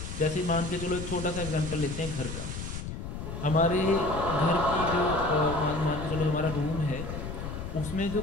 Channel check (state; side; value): noise; left; rumble, 7 dB below the sound